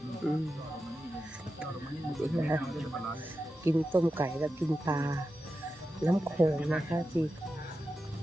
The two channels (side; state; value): both; normal; correlation 0.90